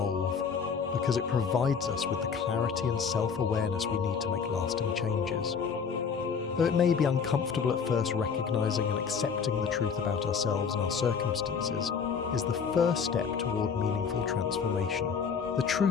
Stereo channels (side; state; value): right; quieter; 6.2 dB